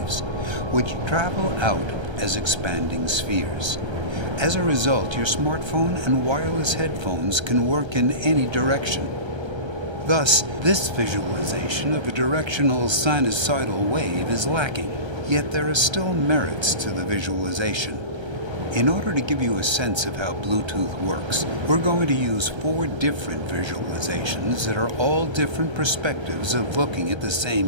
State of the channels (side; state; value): left; late; 1.3 ms